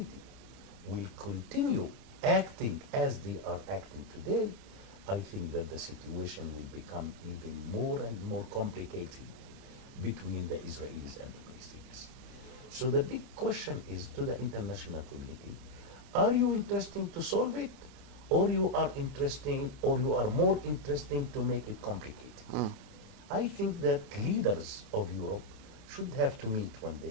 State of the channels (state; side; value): late; left; 30 ms